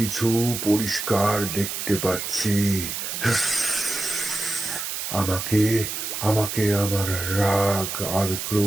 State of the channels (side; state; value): right; noise; hiss, 4 dB below the sound